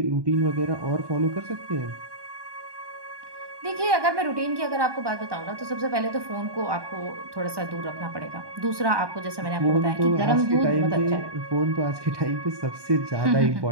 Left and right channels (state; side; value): late; left; 1.2 ms